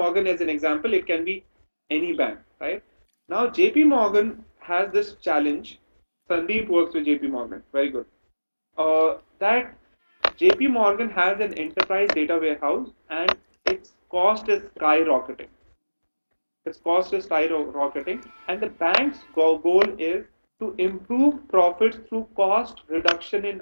as an example. It can be any bank, right? Now, JP Morgan has this challenge. Sandeep works with JP Morgan. Very good. That JP Morgan has an enterprise data warehouse and its cost is skyrocketing. Its cost is skyrocketing, and the bank's goal is to improve profits through cost reduction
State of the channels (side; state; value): both; inverted; correlation -1.00